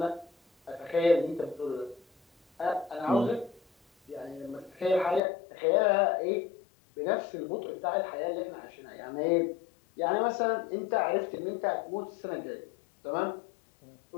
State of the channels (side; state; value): right; drops out; at 5.2 s